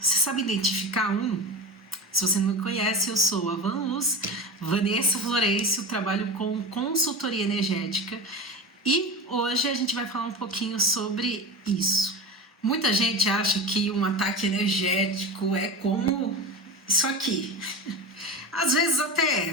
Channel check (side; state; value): both; normal; correlation 0.26